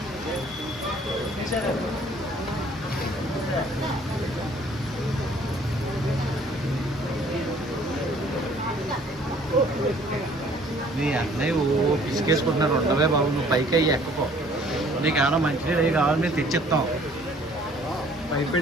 నీ అన్నయ్య పిసికేసుకుంటున్నారు ఉండవే బాబు నువ్వు పైకి అయ్యి ఎక్కకో నీకు ఏమైనా మంచినీళ్ళు అవి కావాలి మేము తెచ్చిస్తాం పైకి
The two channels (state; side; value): normal; both; correlation 0.57